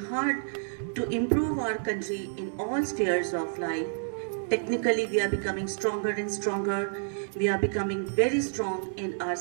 to improve our country in all spheres of life. Technically, we are becoming stronger and stronger. We are becoming very strong in our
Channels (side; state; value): left; silent; digital silence